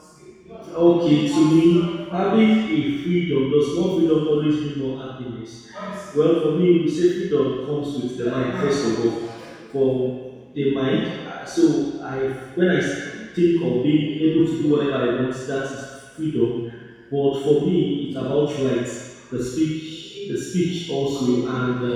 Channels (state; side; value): identical; both; correlation 1.00